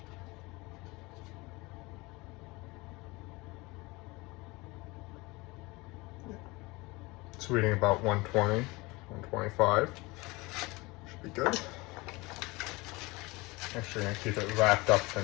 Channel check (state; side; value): quieter; right; 23.5 dB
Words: It's reading about 120, 125. Should be good. Actually, I'm going to keep it wrapped up for